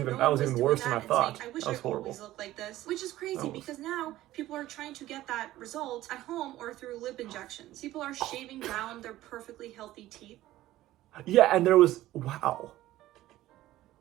even worse than I thought. I wish I always looked like this. Which is crazy because now people are trying to get that result at home or through lip injections. People are shaving down their perfectly healthy teeth. Yeah, and there was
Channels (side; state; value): left; quieter; 15.3 dB